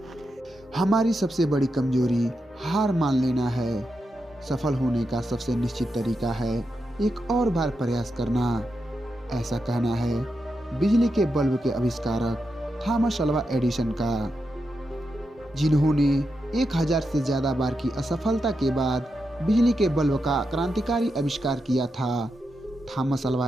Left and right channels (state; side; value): normal; both; correlation 0.86